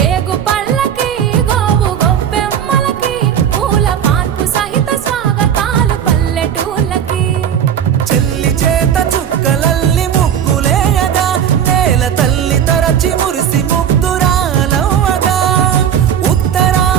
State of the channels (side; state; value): left; quieter; 8.9 dB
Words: పళ్ళకి గోవు గొబ్బెమ్మలకి పూల పాన్పు సహిత స్వాగతాలు పల్లెటూళ్ళకి చెల్లి చేత చుక్కలల్లి ముగ్గులేయగా నేల తల్లి తరచి మురిసి ముగ్ధురాలవ్వగా